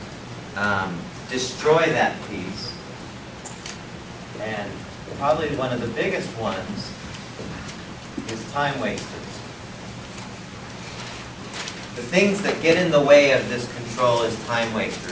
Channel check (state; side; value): identical; both; correlation 1.00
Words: destroy that peace, and probably one of the biggest ones is time wasters. The things that get in the way of this control is time